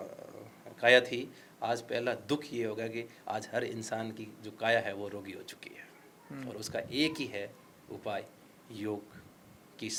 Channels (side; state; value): both; identical; correlation 1.00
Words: काया थी, आज पहला दुख ये होगा कि आज हर इंसान की जो काया है वो रोगी हो चुकी है, और उसका एक ही है उपाय, योग की